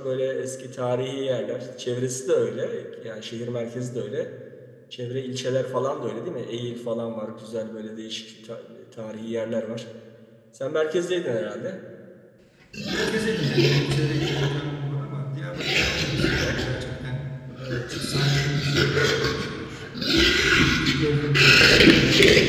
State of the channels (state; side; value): identical; both; correlation 1.00